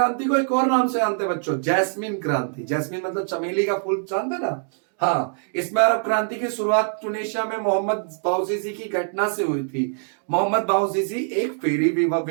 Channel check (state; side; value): silent; left; digital silence